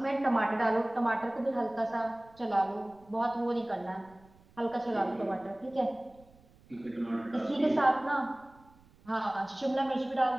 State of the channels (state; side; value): noise; right; rumble, 28 dB below the sound